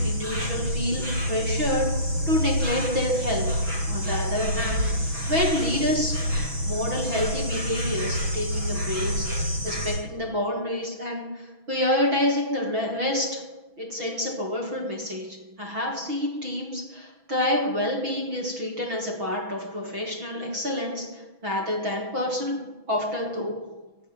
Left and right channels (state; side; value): late; left; 6.1 ms